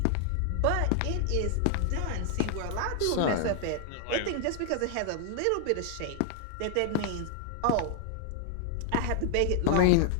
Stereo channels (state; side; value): different; both; correlation 0.00